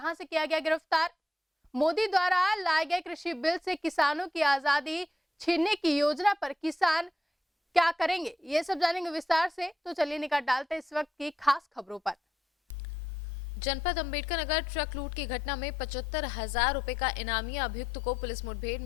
से किया गया गिरफ्तार। मोदी द्वारा लाए गए कृषि बिल से किसानों की आजादी छीनने की योजना पर किसान क्या करेंगे, ये सब जानेंगे विस्तार से। तो चलिए निकाल डालते हैं इस वक्त की खास खबरों पर। जनपद अंबेडकर नगर ट्रक लूट की घटना में 75,000 रुपए का इनामी अभियुक्त को पुलिस मुठभेड़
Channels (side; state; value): both; normal; correlation 0.82